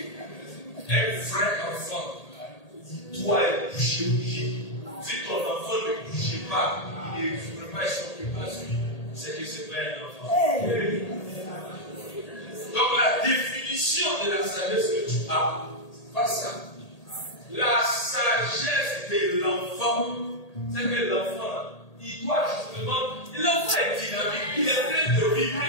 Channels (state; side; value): late; right; 1.8 ms